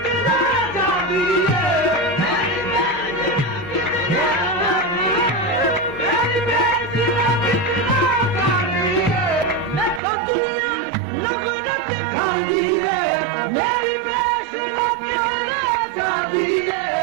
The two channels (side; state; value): left; drops out; at 10.0 s